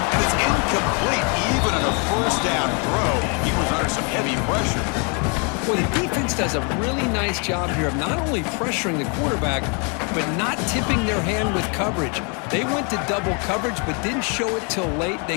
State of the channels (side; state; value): right; quieter; 35.8 dB